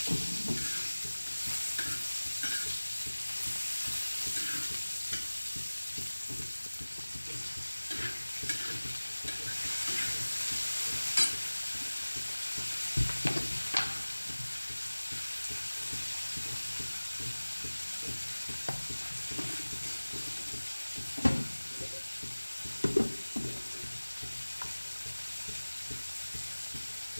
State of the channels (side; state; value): both; inverted; correlation -1.00